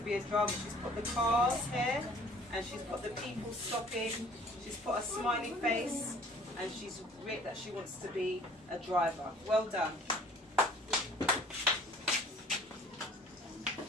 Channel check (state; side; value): normal; both; correlation 0.52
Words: be a driver. She's put the cars here, and she's put the people stopping. She's put a smiley face, and she's written that she wants to be a driver. Well done.